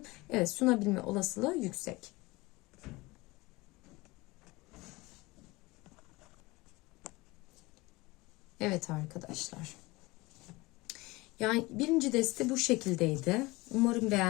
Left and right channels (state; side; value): quieter; right; 22.2 dB